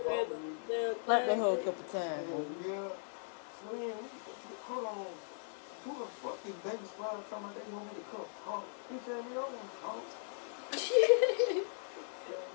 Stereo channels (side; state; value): right; silent; digital silence